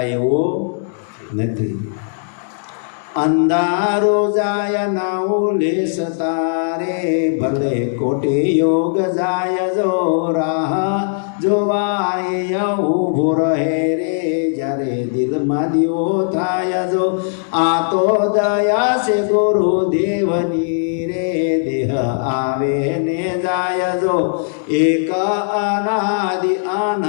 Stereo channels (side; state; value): right; silent; digital silence